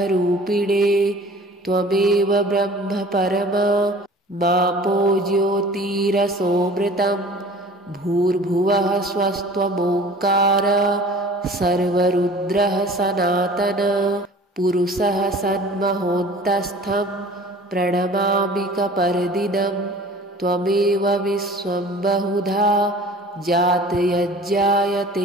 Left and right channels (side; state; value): both; normal; correlation 0.45